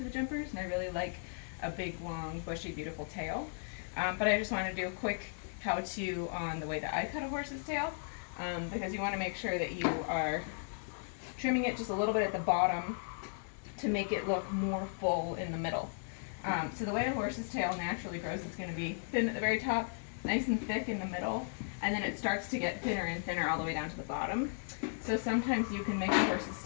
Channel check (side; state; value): right; silent; digital silence